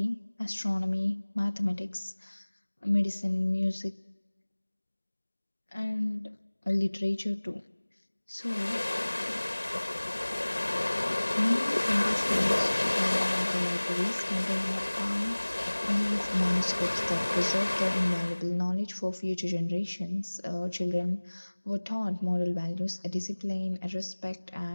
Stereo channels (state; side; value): inverted; both; correlation -1.00